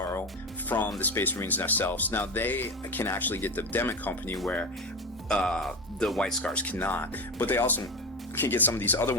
from the Space Marines themselves. Now they can actually get the Demic Company where the White Scars cannot, but they also can get some of these other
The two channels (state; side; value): normal; both; correlation 0.20